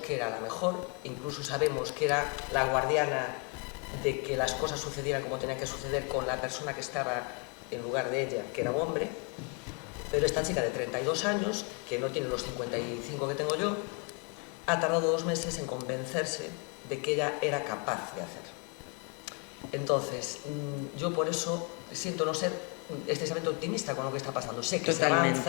era la mejor, incluso sabemos que era la guardiana de que las cosas sucedieran como tenían que suceder con la persona que estaba en lugar de ella, que era un hombre, pero esta chica de 32 años, que no tiene los 55 que tengo yo, ha tardado 2 meses en convencerse de que ella era capaz de hacer. Entonces, yo por eso siento no ser excesivamente optimista con lo que está pasando. Sé que Totalmente. se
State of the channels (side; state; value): right; quieter; 34.3 dB